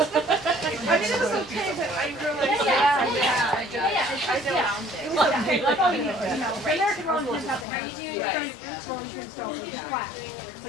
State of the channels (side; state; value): right; drops out; at 7.7 s